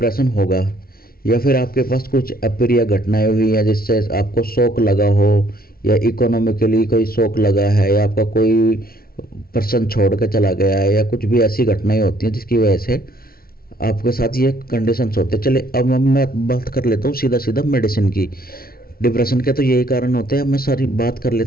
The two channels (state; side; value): late; right; 0.43 ms